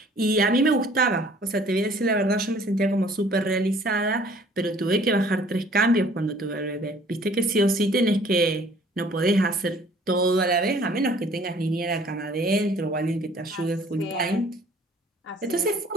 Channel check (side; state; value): both; normal; correlation 0.54